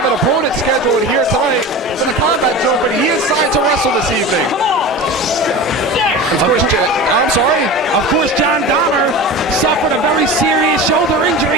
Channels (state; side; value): normal; both; correlation 0.31